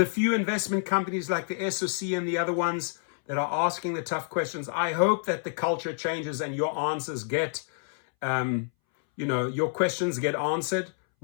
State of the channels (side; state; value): right; silent; 59 dB below the other